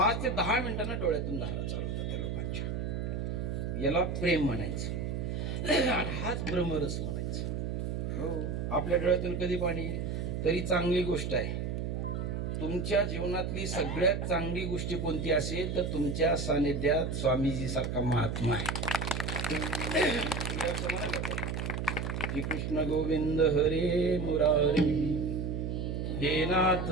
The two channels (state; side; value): noise; right; hum, 2 dB below the sound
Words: ते 10 मिनिटांना डोळ्यातून धारा चालू होतात त्या लोकांच्या. याला प्रेम म्हणायचं आणि हाच ब्रह्मरस म्हणायचं. हो, आपल्या डोळ्यातून कधी पाणी येईल? तरी चांगली गोष्ट आहे. तुमच्या जीवनातली सगळ्यात चांगली गोष्ट कोणती असेल तर तुमच्या सानिध्यात स्वामीजी सारखा महात्मा आहे. श्री कृष्ण गोविंद हरे मुरारी, हे नाथ